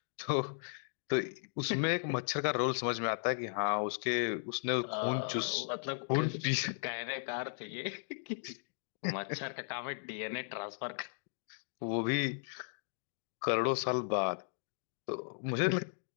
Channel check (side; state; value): right; silent; digital silence